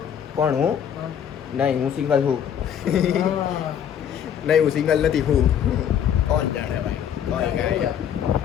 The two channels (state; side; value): quieter; right; 9.0 dB